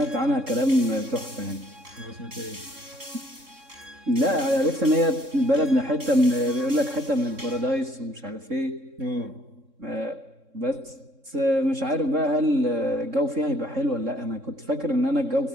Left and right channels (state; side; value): late; left; 3.6 ms